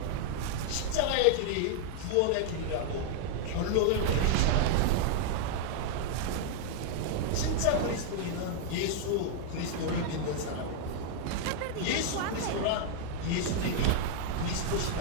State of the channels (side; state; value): both; different; correlation -0.01